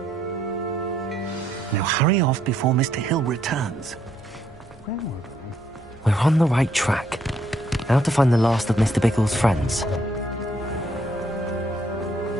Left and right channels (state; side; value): normal; both; correlation 0.71